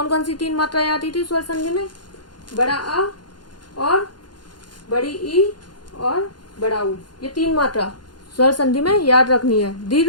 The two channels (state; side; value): late; right; 0.71 ms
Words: कौन सी 3 मात्राएं आती थी स्वर संधि में? बड़ा आ और बड़ी ई और बड़ा ऊ, ये 3 मात्रा स्वर संधि में याद रखनी है,